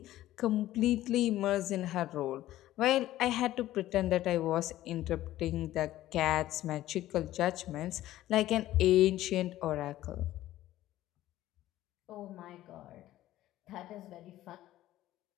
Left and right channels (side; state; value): right; quieter; 14.5 dB